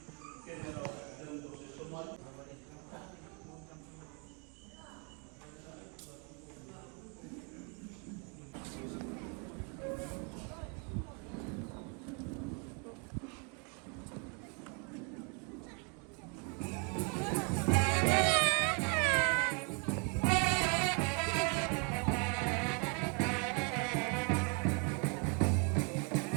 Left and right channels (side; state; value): left; quieter; 36.0 dB